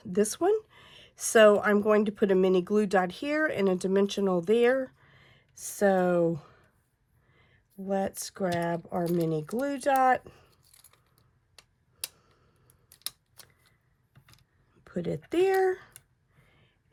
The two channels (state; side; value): identical; both; correlation 1.00